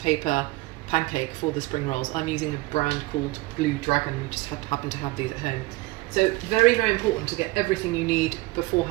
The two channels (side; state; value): left; quieter; 20.9 dB